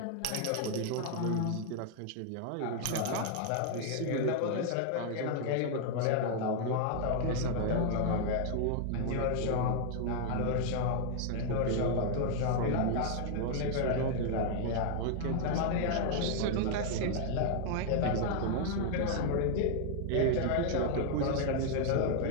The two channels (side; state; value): both; different; correlation 0.00